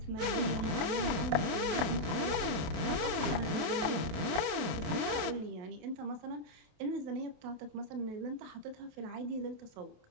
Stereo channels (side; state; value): left; late; 28 ms